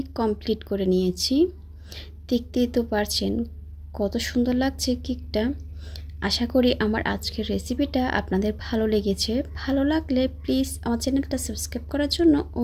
কমপ্লিট করে নিয়েছি। দেখতেই তো পারছেন কত সুন্দর লাগছে কেকটা। আশা করি আমার আজকের রেসিপিটা আপনাদের ভালো লেগেছে। ভালো লাগলে প্লিজ আমার চ্যানেলটা সাবস্ক্রাইব করার জন্য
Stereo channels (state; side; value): identical; both; correlation 1.00